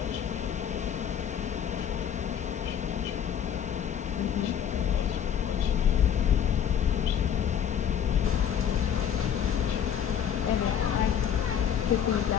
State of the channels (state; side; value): quieter; right; 8.7 dB